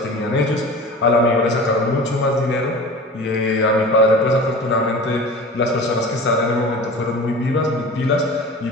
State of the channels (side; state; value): both; normal; correlation 0.37